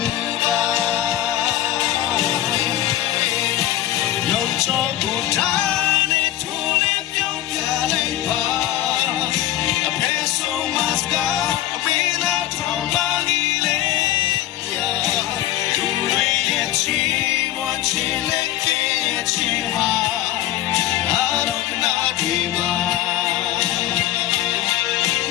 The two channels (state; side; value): quieter; right; 13.7 dB